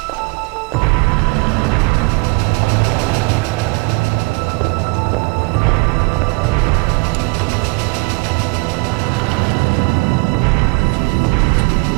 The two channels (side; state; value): left; quieter; 29.5 dB